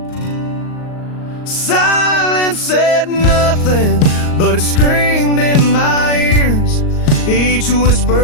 Silence said nothing, but it screamed in my ears, each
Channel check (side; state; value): right; late; 38 ms